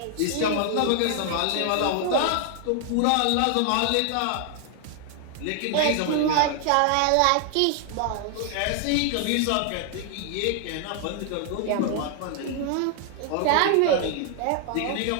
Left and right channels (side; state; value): both; different; correlation 0.00